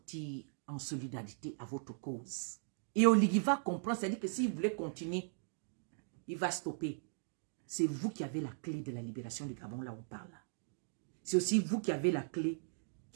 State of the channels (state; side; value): silent; left; digital silence